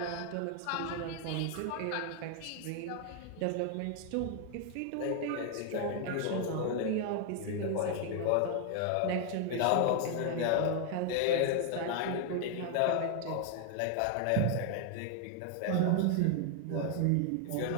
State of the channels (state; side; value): different; both; correlation 0.00